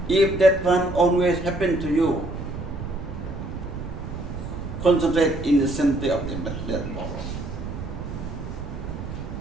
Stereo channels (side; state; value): right; noise; rumble, 8 dB below the sound